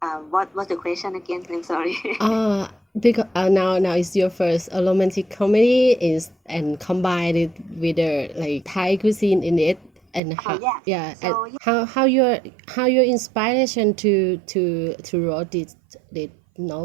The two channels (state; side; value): drops out; left; at 10.2 s